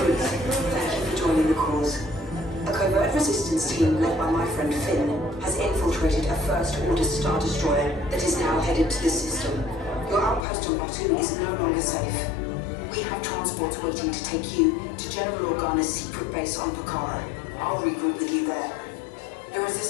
thank you for joining the cause. A covert resistance team led by my friend Finn has infiltrated a First Order Star Destroyer that is now headed to the system. Your outpost on Batu is no longer safe. We have transports waiting to take you to General Organa's secret base on Pakara. I'll regroup with you there. The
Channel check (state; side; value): drops out; right; at 10.4 s